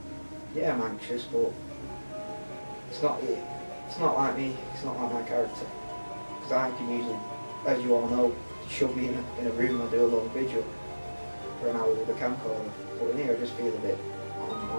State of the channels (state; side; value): inverted; both; correlation -1.00